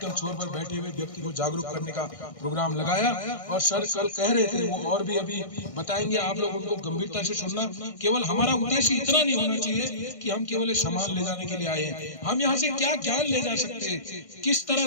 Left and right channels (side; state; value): right; late; 1.6 ms